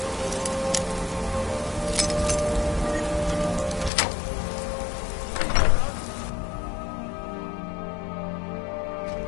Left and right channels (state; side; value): drops out; right; at 3.9 s